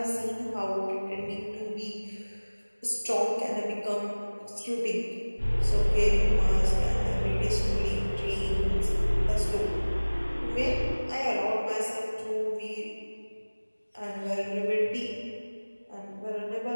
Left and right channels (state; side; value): inverted; both; correlation -1.00